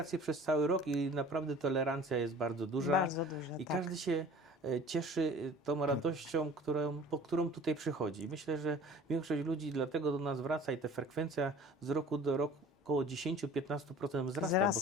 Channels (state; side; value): normal; both; correlation 0.45